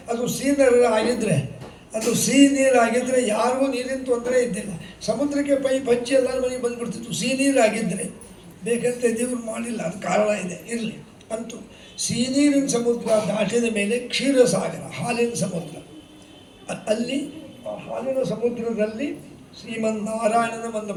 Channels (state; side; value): identical; both; correlation 1.00